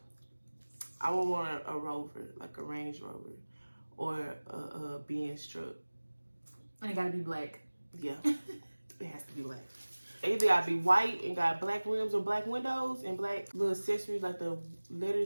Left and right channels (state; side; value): inverted; both; correlation -1.00